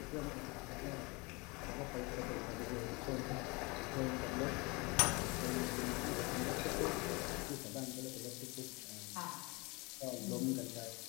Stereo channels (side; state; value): right; quieter; 27.0 dB